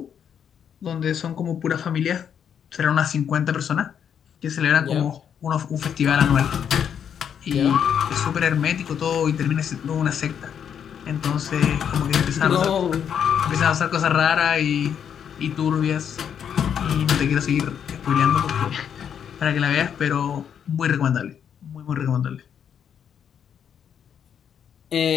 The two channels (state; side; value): quieter; right; 8.3 dB